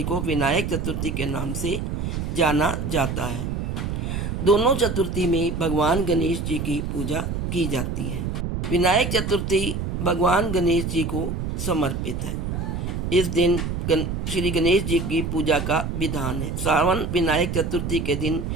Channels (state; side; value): noise; right; rumble, 3 dB below the sound